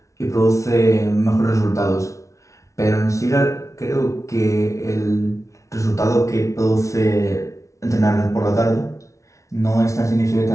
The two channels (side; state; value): right; late; 0.15 ms